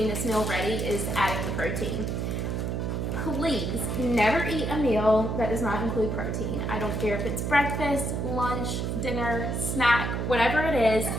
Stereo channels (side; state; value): right; noise; hum, 1 dB below the sound